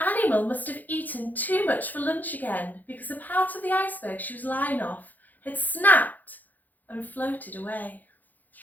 animal must have eaten too much for lunch again, because a part of the iceberg she was lying off had snapped and floated away.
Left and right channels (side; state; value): right; late; 0.083 ms